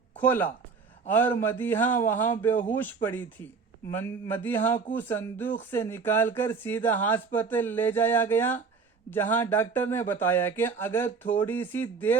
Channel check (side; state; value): left; quieter; 5.2 dB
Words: खोला और मदीहा वहां बेहोश पड़ी थी। मदीहा को संदूक से निकालकर सीधा अस्पताल ले जाया गया, जहां डॉक्टर ने बताया कि अगर थोड़ी सी